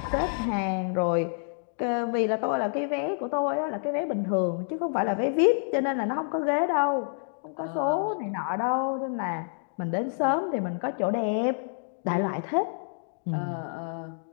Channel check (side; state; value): right; silent; digital silence